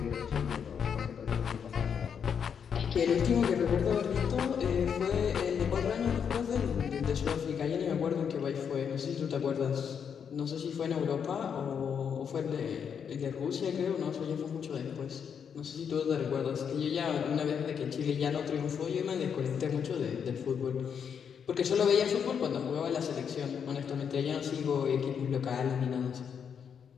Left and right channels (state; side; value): quieter; right; 7.3 dB